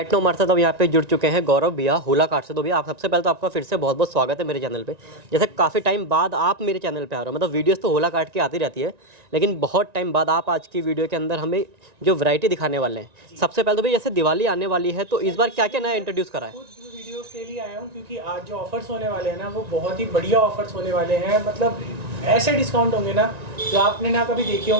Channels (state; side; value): late; left; 1.9 ms